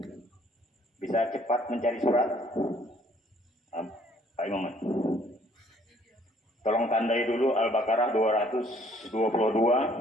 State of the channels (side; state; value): both; normal; correlation 0.61